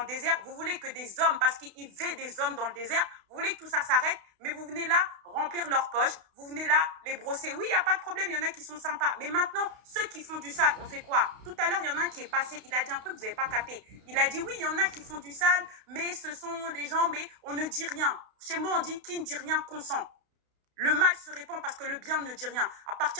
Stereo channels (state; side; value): late; left; 32 ms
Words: désert? Vous voulez que des hommes, parce qu'ils veulent des hommes dans le désert, vous voulez que tout ça s'arrête, mais vous venez là remplir leurs poches, vous venez là les brosser. Oui, il n'y a pas de problème, il y en a qui sont sympas. Mais maintenant, ceux qui font du sale, on fait quoi? Tout à l'heure, il y en a un qui est passé, il a dit un truc que vous n'avez pas capté. Il a dit, oui, il y en a qui font du sale, mais ce sont des gens, mais on ne dit rien. Chez moi, on dit, qui ne dit rien consent. Le mal se répand parce que le bien ne dit rien. À